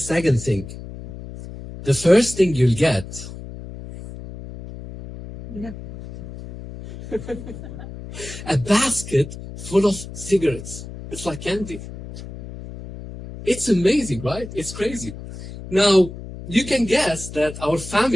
thing. The first thing you'll get a basket full of cigarettes. It's like candy. It's amazing, right? It's crazy. Now, you can guess that our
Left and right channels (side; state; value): left; noise; hum, 12 dB below the sound